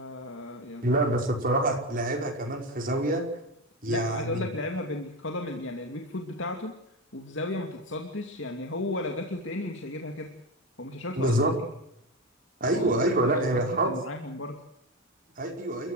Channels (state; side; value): normal; both; correlation 0.18